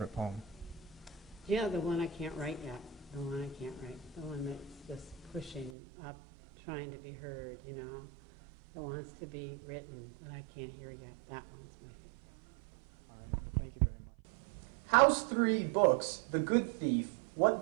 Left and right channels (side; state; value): left; drops out; at 5.7 s